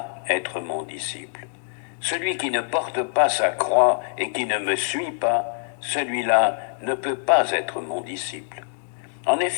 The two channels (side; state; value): right; silent; digital silence